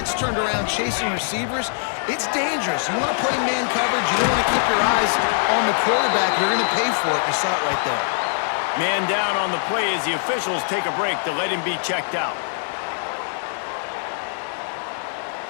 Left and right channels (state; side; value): silent; right; digital silence